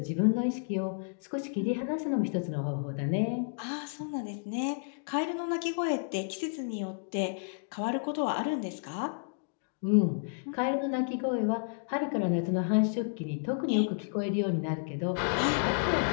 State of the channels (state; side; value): silent; right; digital silence